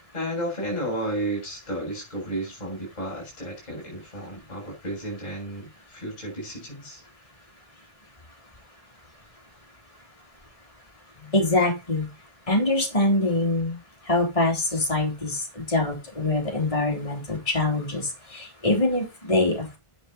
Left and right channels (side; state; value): right; late; 1.6 ms